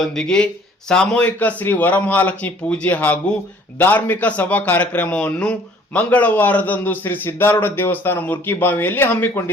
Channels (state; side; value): normal; both; correlation 0.56